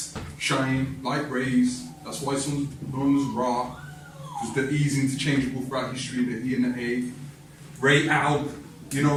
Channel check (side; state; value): both; identical; correlation 1.00